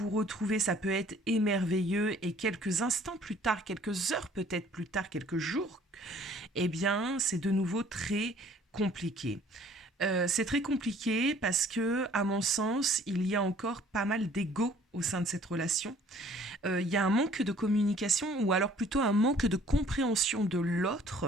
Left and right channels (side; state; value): both; normal; correlation 0.55